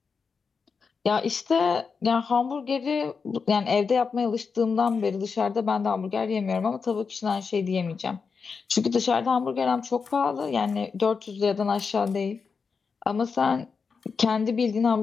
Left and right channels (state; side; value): quieter; right; 5.3 dB